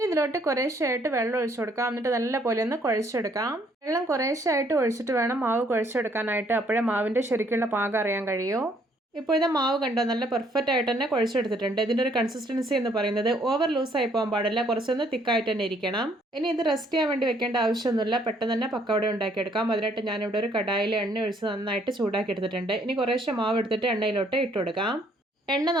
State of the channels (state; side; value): normal; both; correlation 0.65